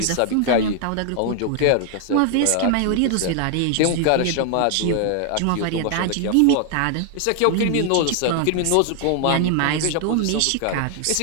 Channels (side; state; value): both; different; correlation 0.00